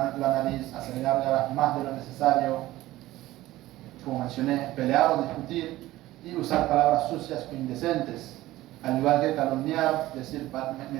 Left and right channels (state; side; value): quieter; left; 16.5 dB